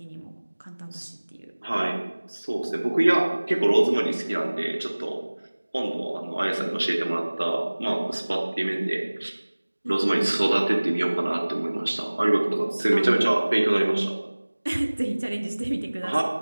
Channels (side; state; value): both; inverted; correlation -1.00